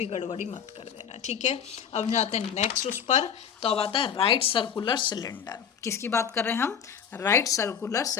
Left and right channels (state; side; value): quieter; right; 7.9 dB